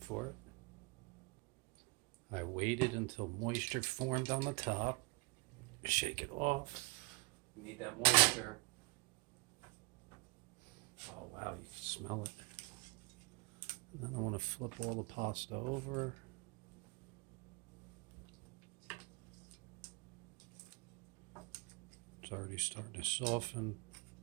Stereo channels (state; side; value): quieter; left; 27.8 dB